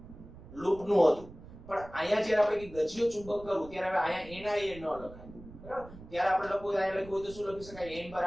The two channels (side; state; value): right; noise; rumble, 17 dB below the sound